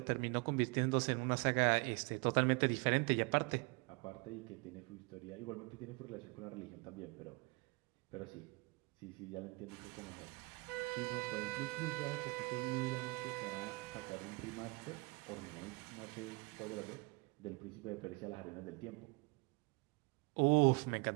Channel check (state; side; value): quieter; left; 28.5 dB